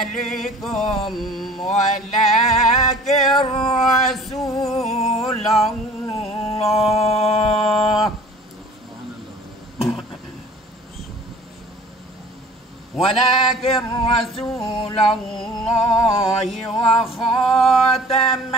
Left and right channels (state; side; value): normal; both; correlation 0.47